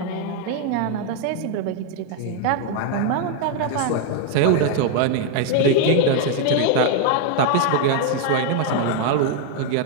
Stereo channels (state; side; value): different; both; correlation 0.00